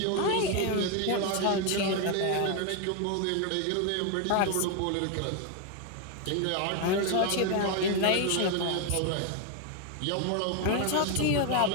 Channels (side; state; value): both; different; correlation 0.01